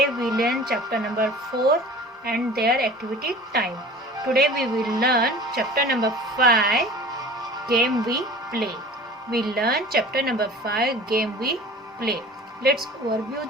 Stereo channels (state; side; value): normal; both; correlation 0.42